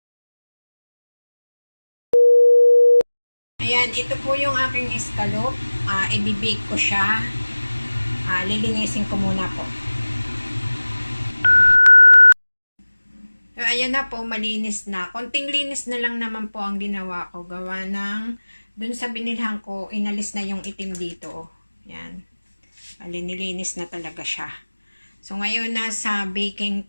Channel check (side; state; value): both; inverted; correlation -1.00